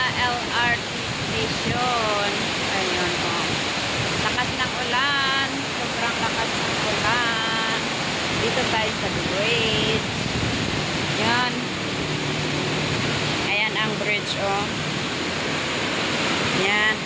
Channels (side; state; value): both; identical; correlation 1.00